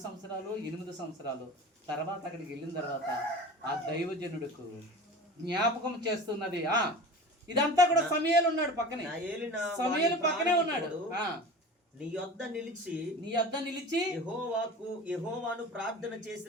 సంవత్సరాలు 8 సంవత్సరాలు తర్వాత అక్కడికి వెళ్ళిన తర్వాత ఆ దైవజనుడికి జ్ఞాపకం చేస్తున్నది. ఇదంతా కూడా సమూయేలు ఉన్నాడు పక్కనే, సమూయేలు పక్కనే ఉన్నాడు. నీ యొద్ద నిలిచి యెహోవాను ప్రార్థన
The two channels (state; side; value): normal; both; correlation 0.35